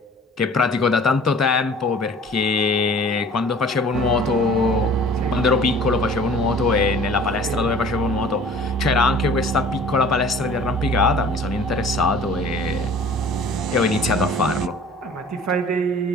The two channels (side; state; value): both; normal; correlation 0.47